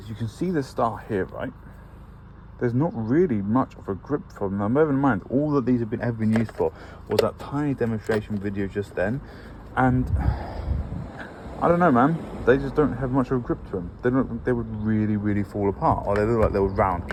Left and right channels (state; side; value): identical; both; correlation 1.00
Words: you can see the star here, right? There's not really much of a grip from them. Bear in mind, all that these have ever been used for was that tiny demonstration video just then, and I don't know, man. They just don't have much of a grip to them. They don't. They would really fall apart, or they look like they would